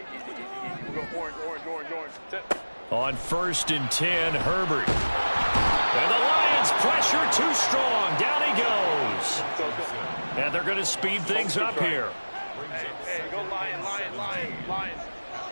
easy. We'll go orange. Sit. On 1st and 10, Herbert. And the Lions pressure too strong. Down he goes. And they're going to speed things up here. Hey, go Lions.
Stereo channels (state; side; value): inverted; both; correlation -1.00